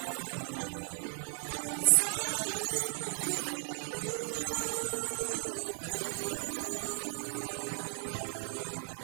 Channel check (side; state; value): left; silent; 54 dB below the other